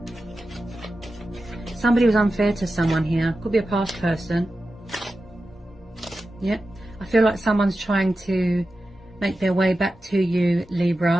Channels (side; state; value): both; normal; correlation 0.92